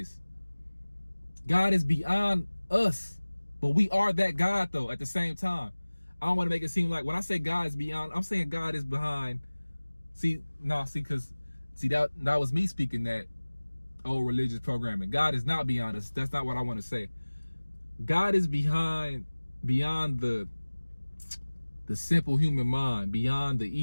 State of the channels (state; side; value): inverted; both; correlation -1.00